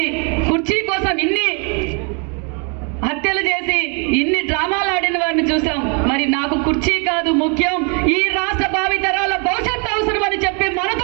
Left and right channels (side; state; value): left; quieter; 36.0 dB